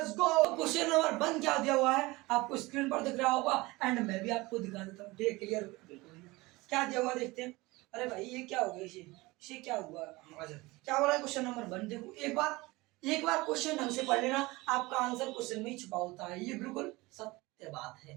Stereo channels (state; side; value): quieter; left; 21.9 dB